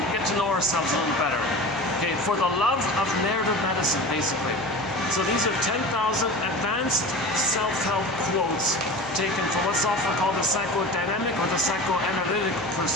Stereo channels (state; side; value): noise; left; hum, 21 dB below the sound